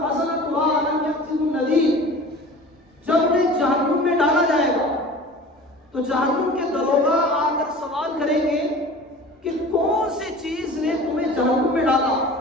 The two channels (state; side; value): normal; both; correlation 0.40